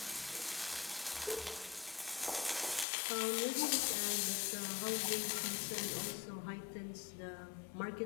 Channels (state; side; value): drops out; right; at 2.9 s